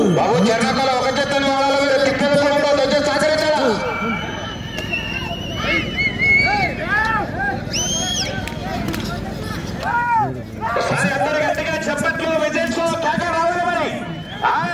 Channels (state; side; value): identical; both; correlation 1.00